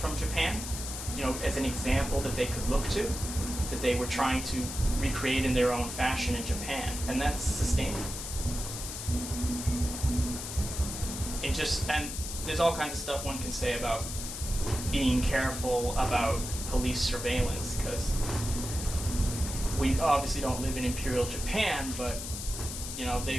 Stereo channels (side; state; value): left; noise; hiss, 7 dB below the sound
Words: Japan, as an example that they could look to, that they were trying to recreate in their own fashion in Japan, and that's sustainable. And there's all kinds of stuff one can say about being careful about police surveillance, because we obviously don't live in Imperial Japan, but you know,